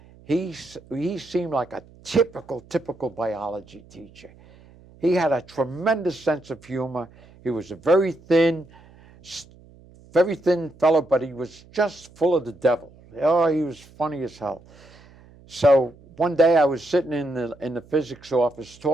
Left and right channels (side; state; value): right; noise; hum, 25 dB below the sound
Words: He seemed like a typical biology teacher. He had a tremendous sense of humor. He was a very thin fellow, but he was just full of the devil. Oh, he was funny as hell. So one day I was sitting in the physics office